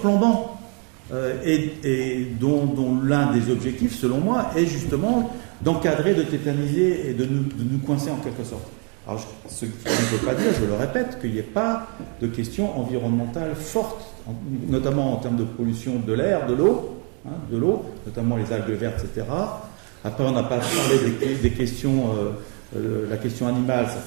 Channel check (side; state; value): left; quieter; 37.6 dB